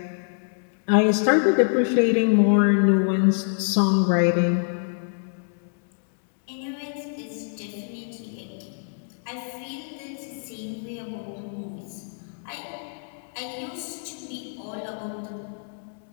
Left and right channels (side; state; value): right; silent; digital silence